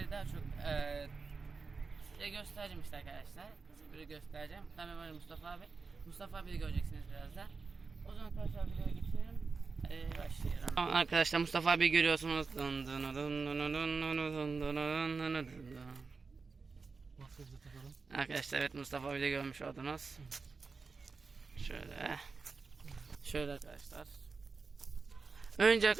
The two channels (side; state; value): left; quieter; 4.5 dB